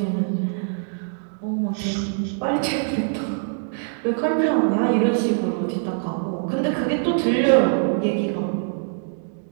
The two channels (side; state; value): left; silent; digital silence